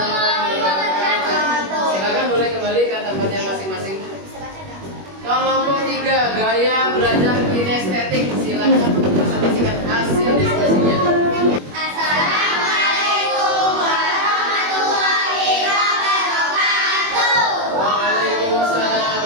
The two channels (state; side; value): late; left; 21 ms